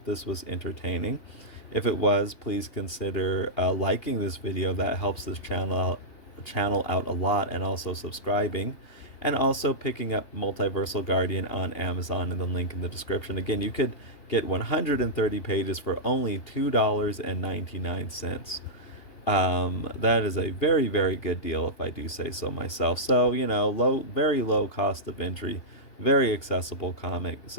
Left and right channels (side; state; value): right; late; 2.8 ms